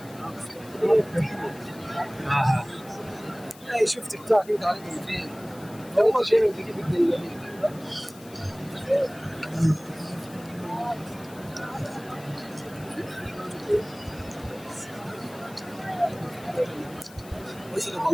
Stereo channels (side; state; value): left; noise; hiss, 21 dB below the sound